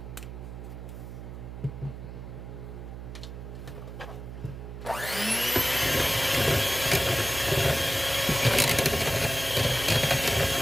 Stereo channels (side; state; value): right; noise; hum, 10 dB below the sound